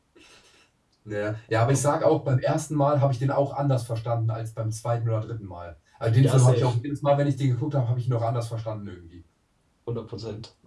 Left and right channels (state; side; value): identical; both; correlation 1.00